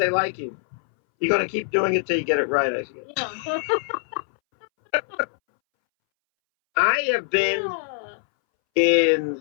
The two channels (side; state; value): right; silent; 63 dB below the other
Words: like you. You're going to keep doing it till you get it right, I guess. Yeah. I have been in,